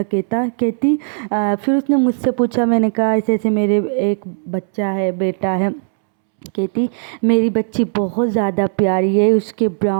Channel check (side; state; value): left; silent; 68 dB below the other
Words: کہتی پھر اس نے مجھ سے پوچھا، میں نے کہا ایسے ایسے میرے ایک بچہ ہے، بیٹا ہے۔ کہتی میری بچی بہت زیادہ پیاری ہے، اس کے